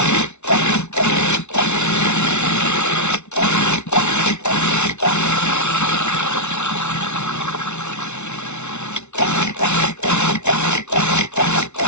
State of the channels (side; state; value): right; late; 0.82 ms